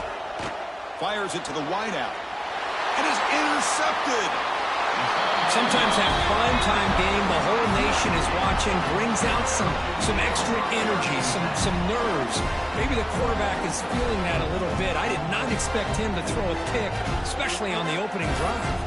Fires it to the wideout. And is intercepted. Sometimes that primetime game, the whole nation is watching, brings out some extra energy, some nerves. Maybe the quarterback is feeling that a little bit. I did not expect him to throw a pick, especially on the opening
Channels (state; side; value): identical; both; correlation 1.00